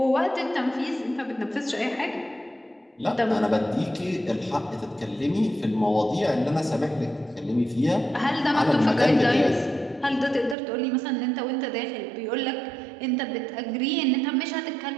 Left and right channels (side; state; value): left; drops out; at 10.6 s